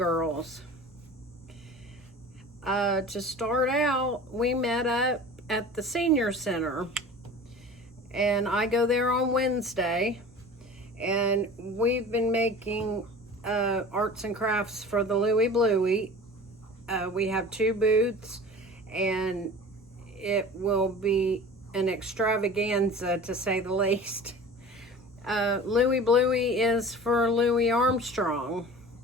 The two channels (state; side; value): normal; both; correlation 0.39